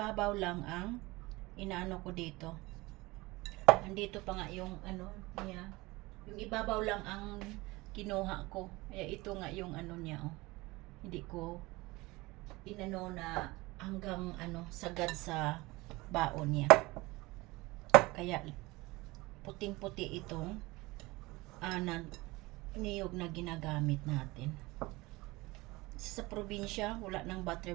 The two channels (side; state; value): left; quieter; 21.8 dB